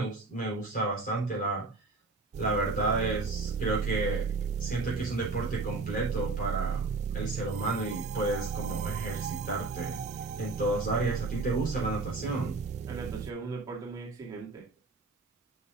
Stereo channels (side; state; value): left; quieter; 3.6 dB